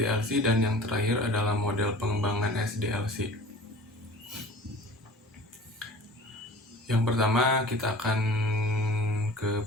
dan yang terakhir adalah model pengembangan SDLC. Yang pertama kita akan ke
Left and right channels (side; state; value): both; normal; correlation 0.43